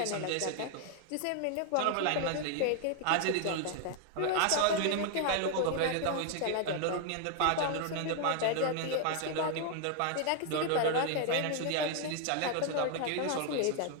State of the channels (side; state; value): both; different; correlation 0.00